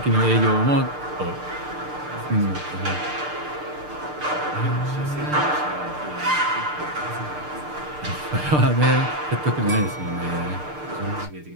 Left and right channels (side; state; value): left; late; 6.7 ms